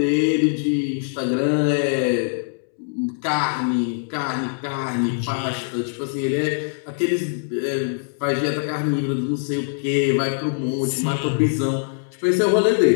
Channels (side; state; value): right; silent; 64 dB below the other